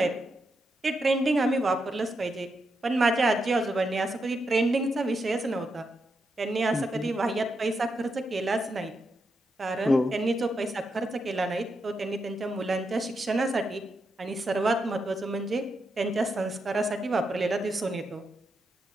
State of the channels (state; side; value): normal; both; correlation 0.84